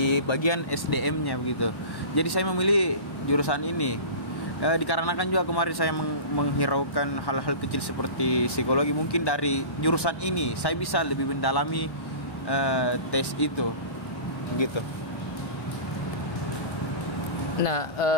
bagian SDM-nya begitu. Jadi saya memilih jurusan ini dikarenakan juga kemarin saya menghiraukan hal-hal kecil seperti psikologi. Mungkin dari jurusan ini saya bisa lebih mendalami tes itu begitu. Nah,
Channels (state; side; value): late; right; 1.1 ms